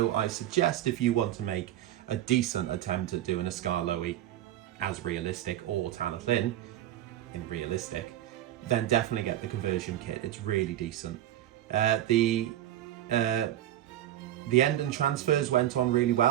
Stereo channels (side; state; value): left; quieter; 12.7 dB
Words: I suggest if you want to make a decent attempt at doing a Skarloey as realistic, or Talyllyn in realistic, then definitely get the conversion kit. It's really decent. The end and transfers went on really